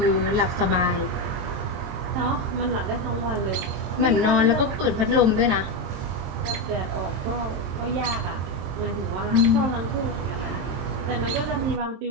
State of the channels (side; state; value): left; late; 23 ms